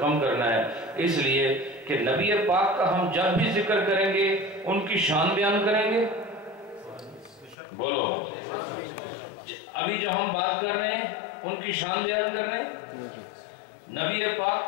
کرنا ہے، اس لیے کہ نبی پاک کا ہم جب بھی ذکر کریں گے ان کی شان بیان کریں گے۔ بولو ابھی جو ہم بات کر رہے ہیں ان کی شان بیان کرنے؟ نبی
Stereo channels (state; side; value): drops out; right; at 7.6 s